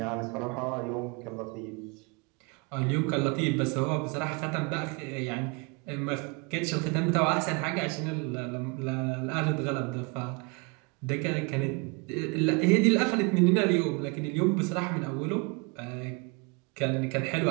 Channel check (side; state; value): left; quieter; 30.5 dB